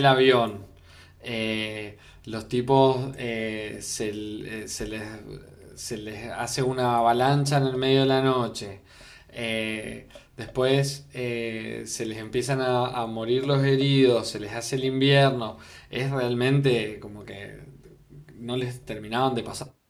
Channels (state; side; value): identical; both; correlation 1.00